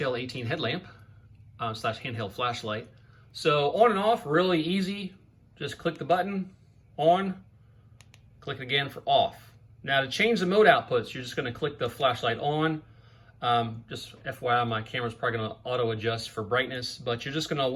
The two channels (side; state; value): both; identical; correlation 1.00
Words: Headlamp. Slash handheld flashlight. So on and off, really easy. Just click the button, on, click it again for off. Now to change the mode outputs, you're just gonna click the flashlight on. Just FYI, my camera's probably gonna auto adjust for brightness, but you're just gonna,